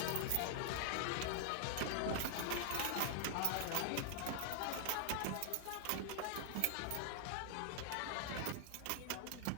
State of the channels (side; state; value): both; different; correlation 0.00